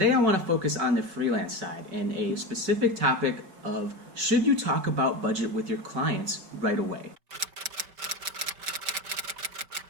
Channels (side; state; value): left; late; 5.2 ms